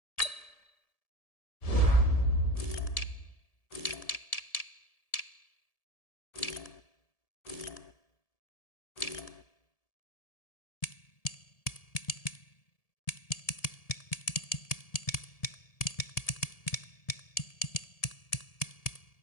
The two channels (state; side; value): late; right; 1.7 ms